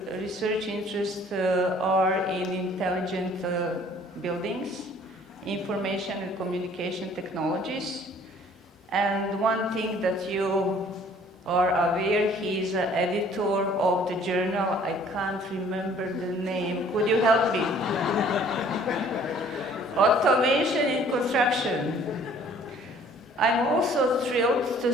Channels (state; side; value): normal; both; correlation 0.55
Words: research interests are in intelligent buildings, information and communication technologies. And one thing that you are aware, he's an editor of the journal, I can't remember the name, could you help me? Automation in Construction. I'm also thrilled to